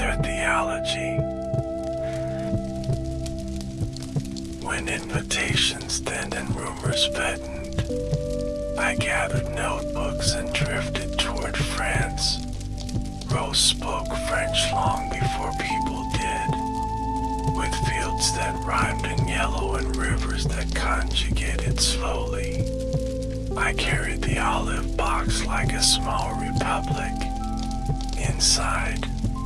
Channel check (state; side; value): identical; both; correlation 1.00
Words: theology. When invitations thinned and rumors fattened, I gathered notebooks and drifted toward France. Rose spoke French long before people did, with fields that rhymed in yellow and rivers that conjugated slowly. I carried the olive box like a small republic. Inside,